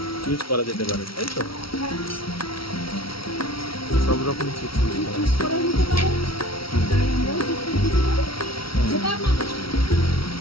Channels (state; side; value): late; right; 0.75 ms